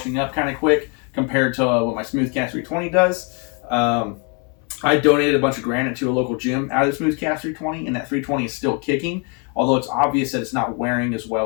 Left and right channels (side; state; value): right; quieter; 35.9 dB